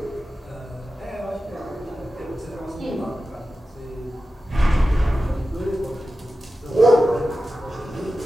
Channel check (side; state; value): both; normal; correlation 0.93